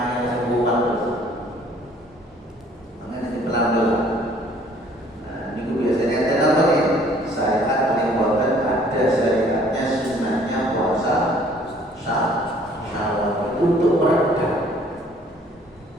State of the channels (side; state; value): both; normal; correlation 0.57